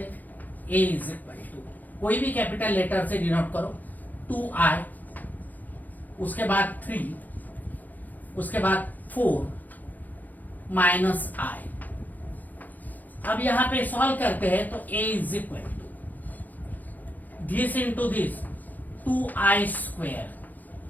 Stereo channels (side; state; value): right; late; 0.083 ms